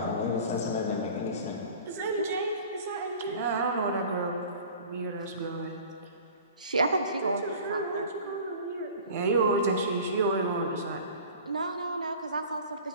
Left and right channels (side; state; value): both; inverted; correlation -0.42